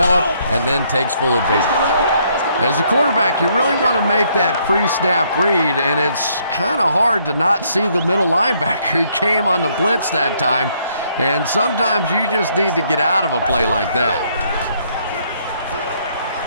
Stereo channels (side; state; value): both; inverted; correlation -0.69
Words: and then takes full advantage. As a quarterback, you really want to make that pre-snap read, and it's kind of hard to not see the middle linebacker. He came on the blitz that time, and sometimes you just need to get out of a play like that.